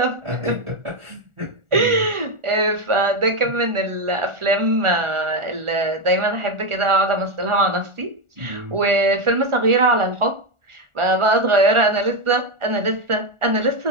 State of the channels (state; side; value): late; left; 1.4 ms